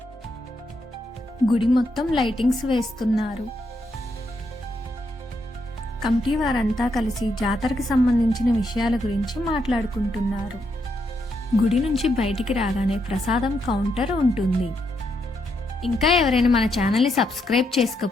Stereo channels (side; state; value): both; normal; correlation 0.79